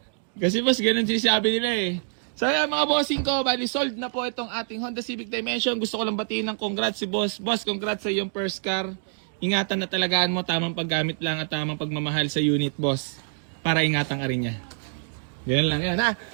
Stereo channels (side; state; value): left; silent; 61 dB below the other